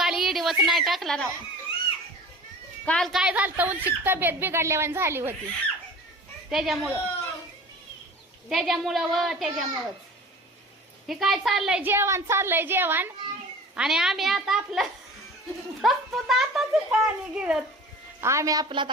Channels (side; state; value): both; normal; correlation 0.40